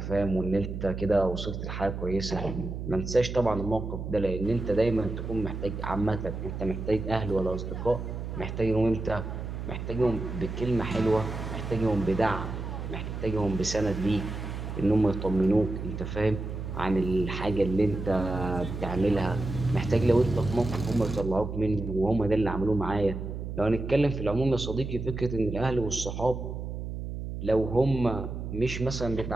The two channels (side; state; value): right; noise; hum, 6 dB below the sound